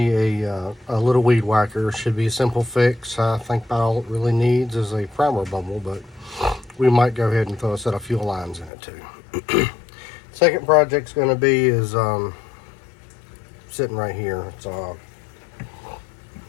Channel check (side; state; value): right; drops out; at 8.7 s